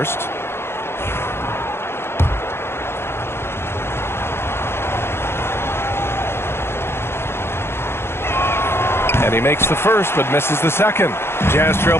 And he makes the first, but misses the second. Jazz trail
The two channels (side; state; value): right; late; 0.12 ms